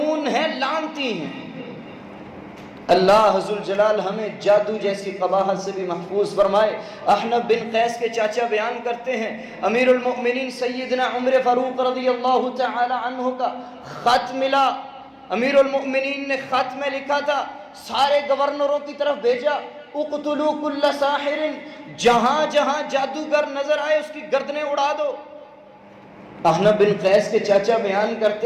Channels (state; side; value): identical; both; correlation 1.00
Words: ہیں، لعنتی ہیں۔ اللہ ذوالجلال ہمیں جادو جیسی قباحت سے بھی محفوظ فرمائے۔ احنف بن قیس کے چاچا بیان کرتے ہیں، امیر المؤمنین سیدنا عمر فاروق رضی اللہ تعالی عنہ کا خط ملا، امیر المؤمنین نے خط میں لکھا تھا، سارے گورنروں کی طرف بھیجا، اقتلوا کل ساحر، جہاں جہاں جادوگر نظر آئے اس کی گردنیں اڑا دو۔ احنف بن قیس کے چاچا بیان